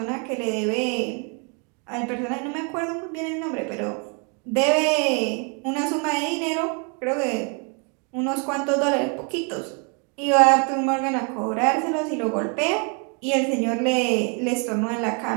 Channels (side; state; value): left; quieter; 36.6 dB